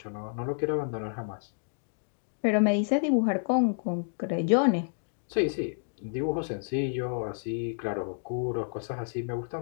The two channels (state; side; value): silent; right; digital silence